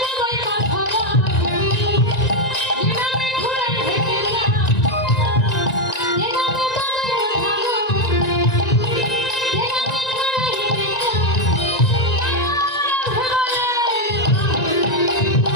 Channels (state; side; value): late; right; 1.9 ms